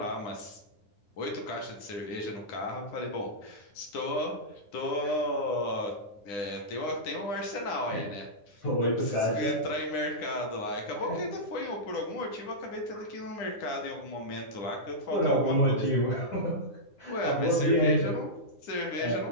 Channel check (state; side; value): late; right; 10 ms